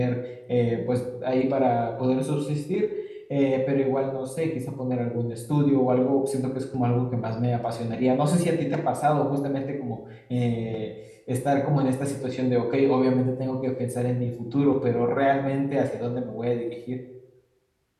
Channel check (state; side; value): identical; both; correlation 1.00